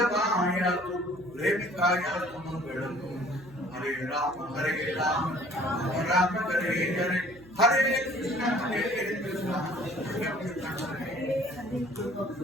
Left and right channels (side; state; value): right; noise; hum, 23 dB below the sound